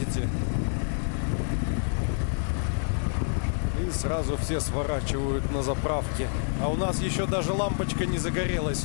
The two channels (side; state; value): right; silent; 60 dB below the other